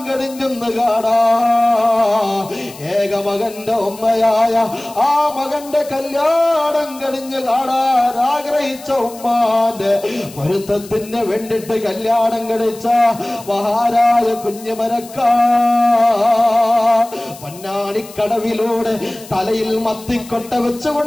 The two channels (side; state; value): left; noise; hiss, 19 dB below the sound